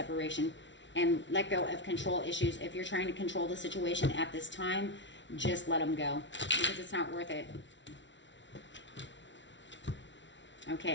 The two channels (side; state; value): right; late; 0.54 ms